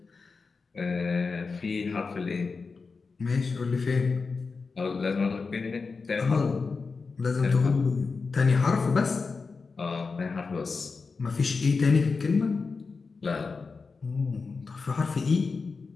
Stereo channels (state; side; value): quieter; right; 4.5 dB